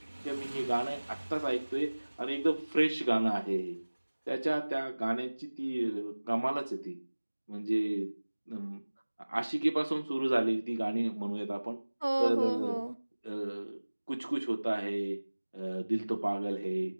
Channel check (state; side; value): inverted; both; correlation -1.00